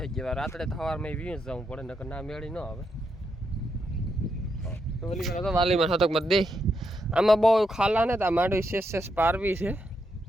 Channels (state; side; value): normal; both; correlation 0.81